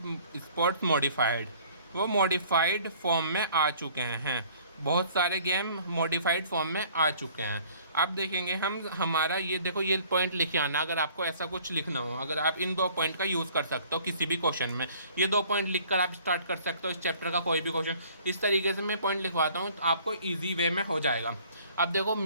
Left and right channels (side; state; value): both; inverted; correlation -0.54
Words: sports modified. वो मॉडिफाइड फॉर्म में आ चुके हैं, बहुत सारे गेम मॉडिफाइड फॉर्म में आ चुके हैं। अब देखेंगे हम, हमारा ये देखो ये पॉइंट लिखे आना, अगर आपको ऐसा कुछ लिखना हो, अगर आप इन 2 पॉइंट का यूज़ कर सकते हो किसी भी क्वेश्चन में, ये 2 पॉइंट लिखकर आप स्टार्ट कर सकते हो इस चैप्टर का कोई भी क्वेश्चन। इस तरीके से मैं पॉइंट लिखवाता हूँ, आपको ईजी वे में हो जाएगा। अब देखो